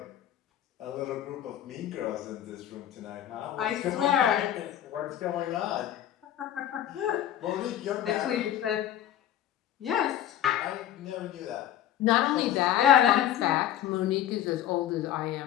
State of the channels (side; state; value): right; quieter; 11.4 dB